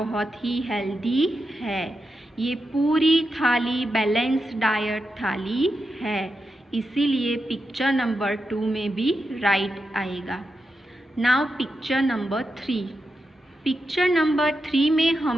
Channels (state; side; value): normal; both; correlation 0.87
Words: ही हेल्दी है। ये पूरी थाली बैलेंस डाइट थाली है, इसीलिए पिक्चर नंबर 2 में भी राइट आएगा। नाउ पिक्चर नंबर 3 में